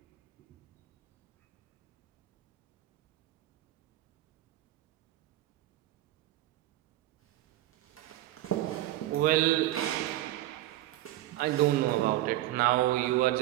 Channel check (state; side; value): quieter; left; 15.5 dB